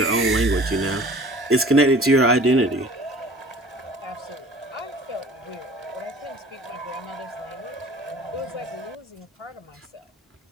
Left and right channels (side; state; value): both; normal; correlation 0.47